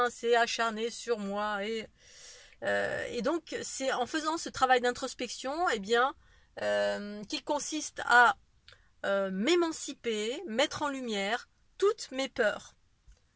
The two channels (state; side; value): identical; both; correlation 1.00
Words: s'est acharné sur moi, et donc c'est en faisant ce travail d'introspection qu'il consiste à m'émanciper, mettre en lumière toutes mes peurs.